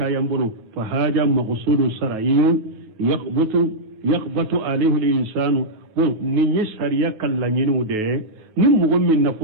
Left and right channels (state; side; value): late; left; 9.3 ms